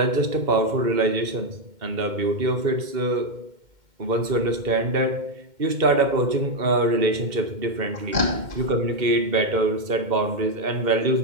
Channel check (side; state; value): left; late; 2.1 ms